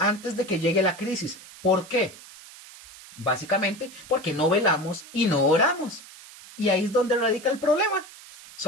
de que llegue la crisis. ¿Por qué? Básicamente porque no velamos y no oramos. Y ahí es donde radica el problema.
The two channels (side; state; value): right; noise; hiss, 19 dB below the sound